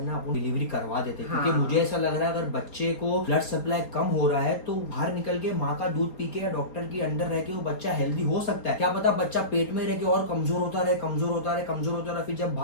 ना अपन डिलीवरी करवा देते, क्योंकि मुझे ऐसा लग रहा है अगर बच्चे को ब्लड सप्लाई कम हो रहा है तो बाहर निकल के माँ का दूध पी के या डॉक्टर के अंडर रह के वो बच्चा हेल्दी हो सकता है। क्या पता बच्चा पेट में रह के और कमजोर होता रहे, फिर जब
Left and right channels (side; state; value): right; late; 4.3 ms